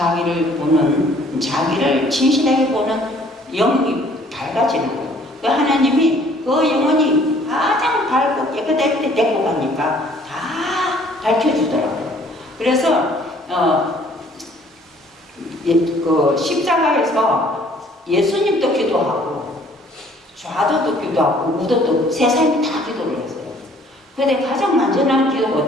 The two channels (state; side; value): normal; both; correlation 0.58